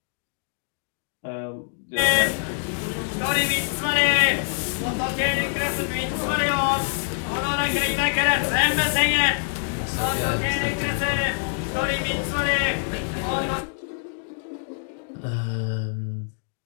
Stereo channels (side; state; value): right; silent; digital silence